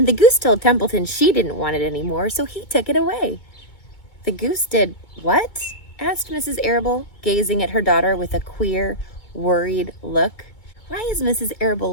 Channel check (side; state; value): right; late; 2.2 ms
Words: the goose told Templeton she didn't want it anymore, so he took it away." "The goose did what?" asked Mrs. Arable, gazing at her daughter with a queer, worried look. Why is Mrs.